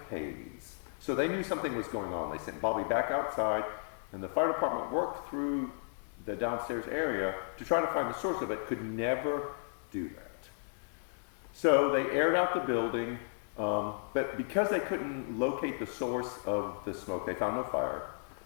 haze. So they knew something was going on. They sent Bobby back outside, and the fire department worked through the downstairs area to try to find the source of it, could never do that. So they aired out the building, but because they couldn't locate the source of the smoke, they found no fire.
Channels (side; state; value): right; silent; digital silence